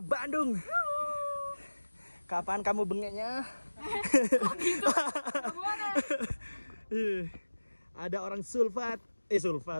Kapan kamu bengeknya? Kok gitu? Gimana? Ada orang sulfat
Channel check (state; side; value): inverted; both; correlation -1.00